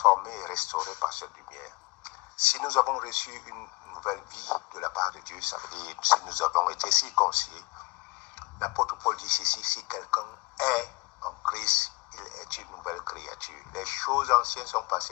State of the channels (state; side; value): quieter; right; 25.6 dB